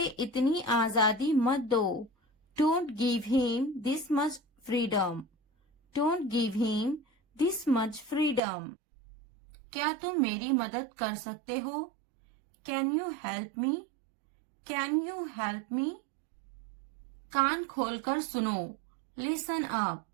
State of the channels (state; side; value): drops out; left; at 8.4 s